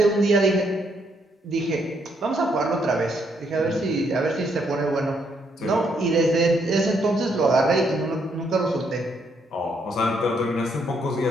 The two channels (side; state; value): both; normal; correlation 0.73